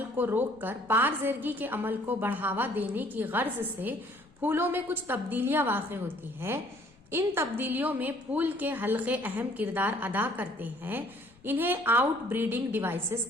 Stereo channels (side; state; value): left; noise; rumble, 28 dB below the sound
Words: को रोककर पारजेरगी के अमल को बढ़ावा देने की गर्ज से फूलों में कुछ तब्दीलियां वाक़ होती है। इन तब्दीलियों में फूल के हल्के अहम किरदार अदा करते हैं। इन्हें आउटब्रीडिंग डिवाइसेस